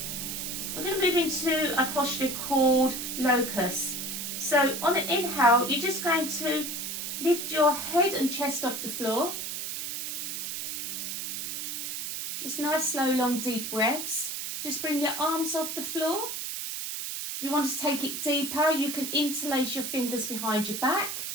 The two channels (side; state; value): right; noise; hiss, 4 dB below the sound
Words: We're going to move into a posture called locust. So on an inhale, you're just going to lift your head and chest off the floor. Just nice, slow, long, deep breaths. Just bring your arms off the floor. If you want to take it deeper, you can interlace your fingers behind your back.